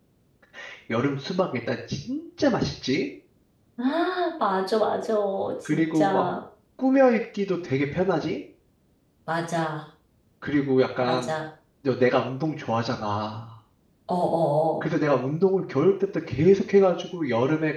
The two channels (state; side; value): identical; both; correlation 1.00